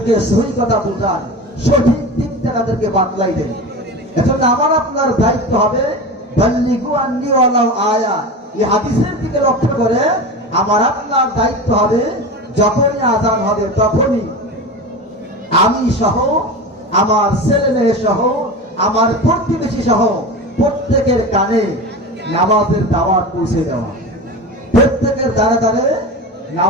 সহি কথা বুঝান, সঠিক দিকটা তাদেরকে বাতলাই দেন। এজন্য আমার আপনার দায়িত্ব হবে বাল্লিগু আন্নি ওয়ালাউ আয়া। এই হাদিসের দিকে লক্ষ্য করে আমার আপনার দায়িত্ব হবে যখনই আযান হবে তখনই আমি সহ, আমার ছেলে মেয়ে সহ, আমার প্রতিবেশী সহ প্রত্যেকের কানে নামাজের দাওয়াত পৌঁছে দেওয়া, প্রত্যেকের দ্বারে দ্বারে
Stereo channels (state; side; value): normal; both; correlation 0.28